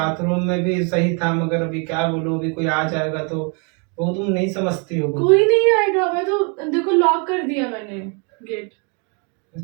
में भी सही था, मगर अभी क्या बोलूं, अभी कोई आ जाएगा तो वो तुम नहीं समझती हो। कोई नहीं आएगा, मैं तो देखो लॉक कर दिया मैंने गेट।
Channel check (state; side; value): quieter; left; 35.9 dB